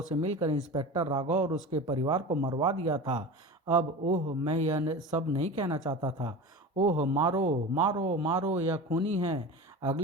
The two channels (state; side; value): normal; both; correlation 0.31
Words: मिलकर इंस्पेक्टर राघव और उसके परिवार को मरवा दिया था। अब ओह, मैं यह सब नहीं कहना चाहता था। ओह, मारो मारो मारो, यह खूनी है।